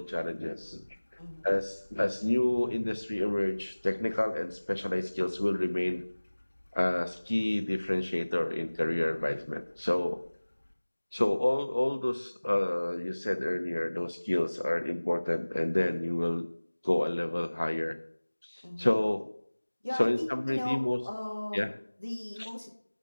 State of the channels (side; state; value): both; inverted; correlation -1.00